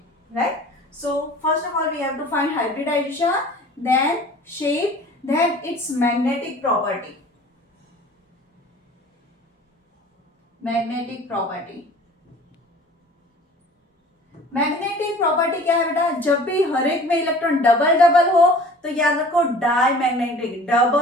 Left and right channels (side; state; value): both; normal; correlation 0.46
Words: right? So first of all we have to find hybridization, then shape, then its magnetic property. Magnetic property. Magnetic property क्या है बेटा? जब भी हर एक में इलेक्ट्रॉन डबल डबल हो तो याद रखो diamagnetic.